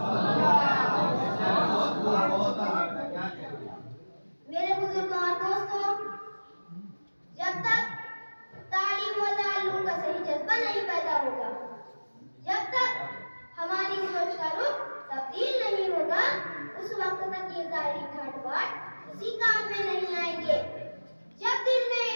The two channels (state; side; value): inverted; both; correlation -1.00